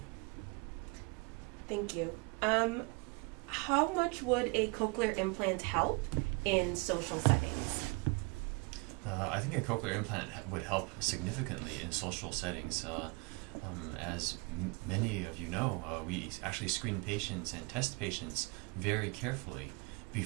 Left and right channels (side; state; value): left; quieter; 29.4 dB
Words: Thank you. How much would a cochlear implant help in social settings? I think a cochlear implant would help significantly in social settings. As many of you know, we actually screen patients and test patients very carefully